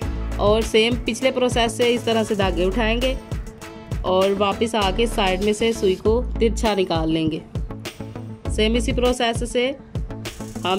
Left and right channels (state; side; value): identical; both; correlation 1.00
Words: और सेम पिछले प्रोसेस से इस तरह से धागे उठाएंगे और वापस आके साइड में से सुई को तिरछा निकाल लेंगे। सेम इसी प्रोसेस से